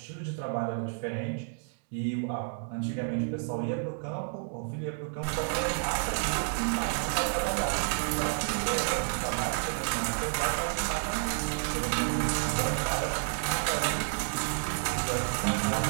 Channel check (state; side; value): silent; left; digital silence